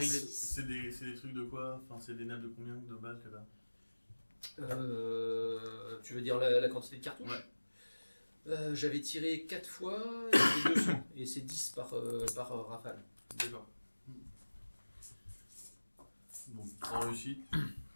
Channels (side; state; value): both; inverted; correlation -1.00